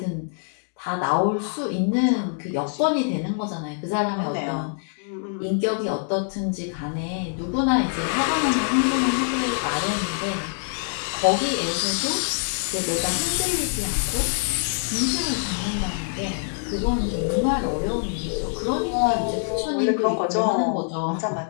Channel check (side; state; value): right; silent; 62 dB below the other